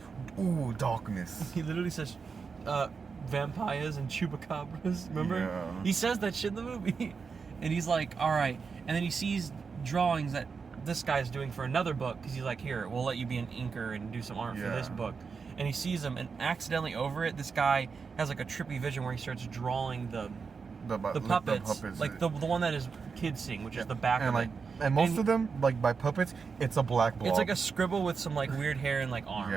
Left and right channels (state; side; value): quieter; left; 5.3 dB